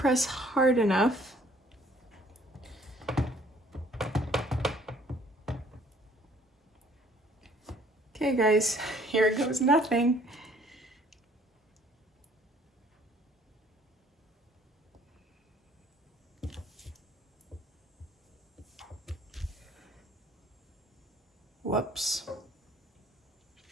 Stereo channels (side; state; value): both; normal; correlation 0.58